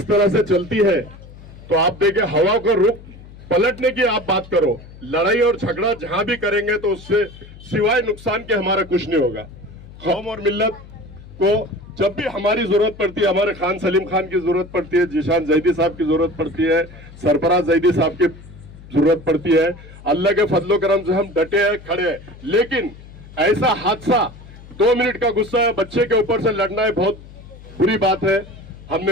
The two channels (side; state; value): left; noise; hum, 18 dB below the sound